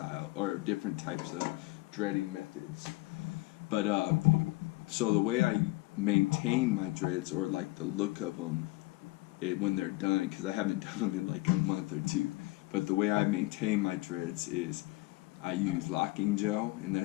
or different types of dreading methods. But so the way I maintain my dreads, or like the look of them when they're done, because I haven't done them in like a month or two, but the way I maintain my dreads is I use locking gel, and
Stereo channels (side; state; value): right; quieter; 21.2 dB